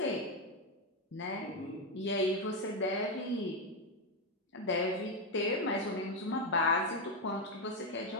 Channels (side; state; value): both; normal; correlation 0.06